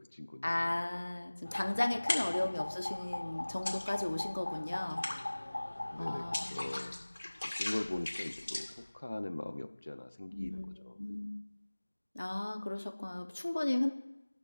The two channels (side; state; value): both; inverted; correlation -1.00